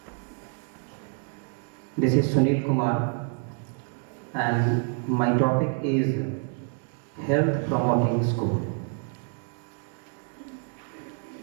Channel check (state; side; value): quieter; left; 39.4 dB